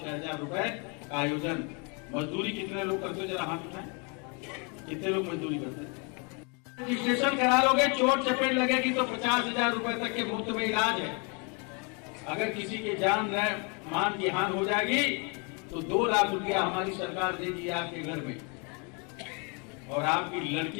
रुपए का आयोजन। मजदूरी कितने लोग करते हो? जरा हाथ उठाएं, कितने लोग मजदूरी करते हैं? रजिस्ट्रेशन करा लोगे, चोट चपेट लगेगी तो 50,000 रुपए तक के मुफ्त में इलाज है। अगर किसी के जान मान की हानि हो जाएगी तो 2 लाख रुपया हमारी सरकार देगी आपके घर में। और आपकी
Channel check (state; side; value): quieter; right; 34.0 dB